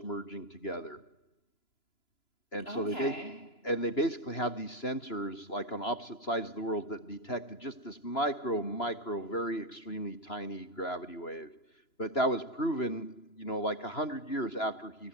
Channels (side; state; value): right; late; 3.0 ms